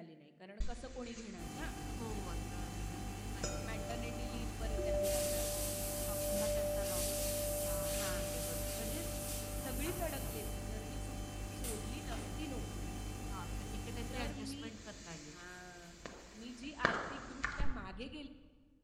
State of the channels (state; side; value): identical; both; correlation 1.00